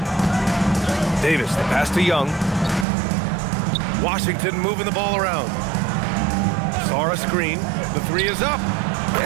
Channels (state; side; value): drops out; left; at 2.9 s